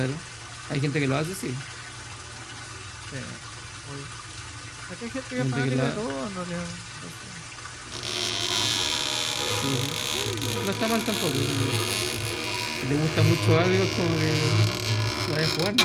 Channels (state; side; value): identical; both; correlation 1.00